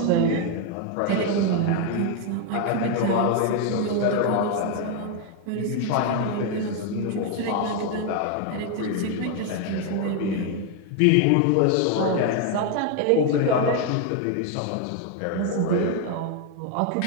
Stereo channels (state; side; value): different; both; correlation 0.01